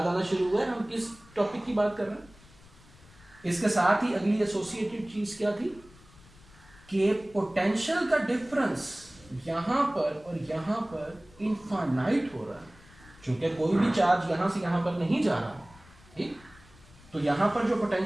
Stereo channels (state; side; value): noise; left; rumble, 24 dB below the sound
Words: आना शुरू हुआ है, हम किस टॉपिक की बात कर रहे हैं। इसके साथ ही अगली एसोसिएटेड चीज क्या थी कि पोटेंशियल का डिफरेंस यहां पर और यहां पर इनफाइनाइट हो रहा है, क्योंकि कोई भी चार्ज यहां से यहां पर नहीं जा रहा, ठीक। तो यहां पर जो